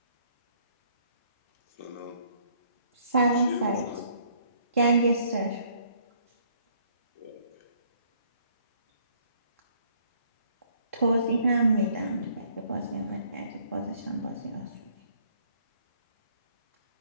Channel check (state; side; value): inverted; both; correlation -0.63